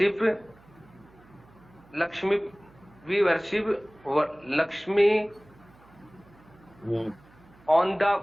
Lakshmi. We worship Lakshmi hmm, on the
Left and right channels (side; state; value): right; noise; hum, 27 dB below the sound